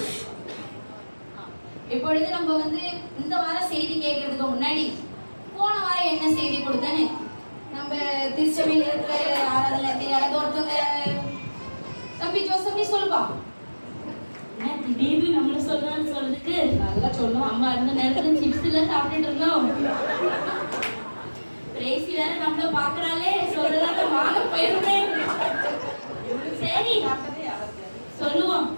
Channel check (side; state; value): both; inverted; correlation -1.00